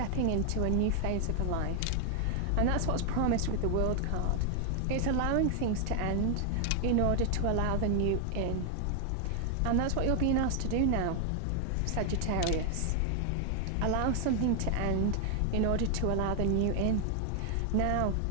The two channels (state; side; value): different; both; correlation 0.00